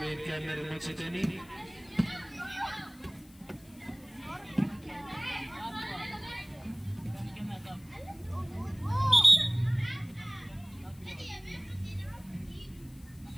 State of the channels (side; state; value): left; noise; hiss, 26 dB below the sound